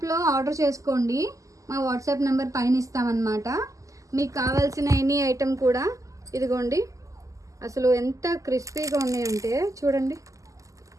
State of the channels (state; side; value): late; left; 0.16 ms